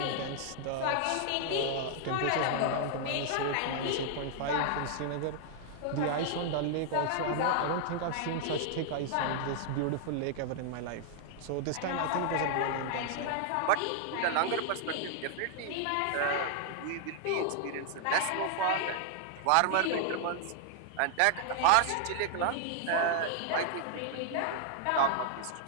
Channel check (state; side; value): different; both; correlation 0.00